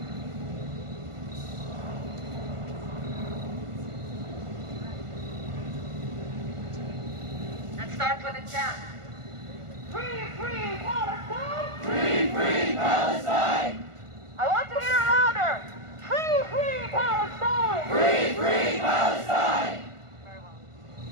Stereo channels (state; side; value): late; left; 1.5 ms